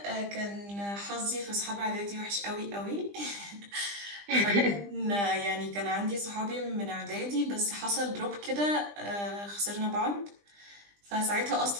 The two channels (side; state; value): left; late; 20 ms